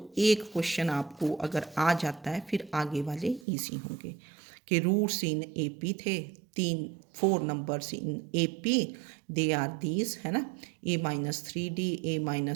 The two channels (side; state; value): left; drops out; at 3.5 s